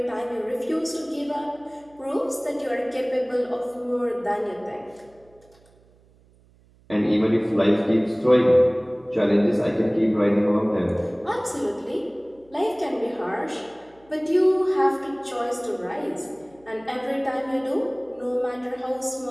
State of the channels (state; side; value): noise; right; hum, 30 dB below the sound